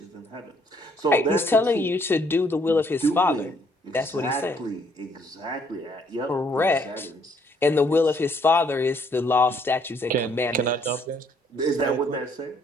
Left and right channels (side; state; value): both; normal; correlation 0.67